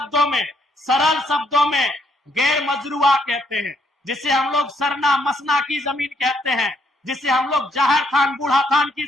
में, सरल शब्दों में गैर मजरूआ कहते हैं, जिसे हम लोग सरना मसना की जमीन कहते हैं, जिसे हम लोग जहर खान बूढ़ा खान की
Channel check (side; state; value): both; normal; correlation 0.72